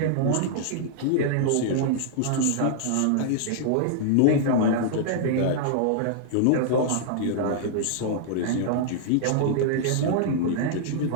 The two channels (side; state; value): both; different; correlation -0.01